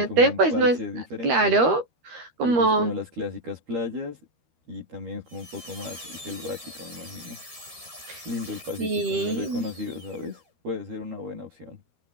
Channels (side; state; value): left; late; 13 ms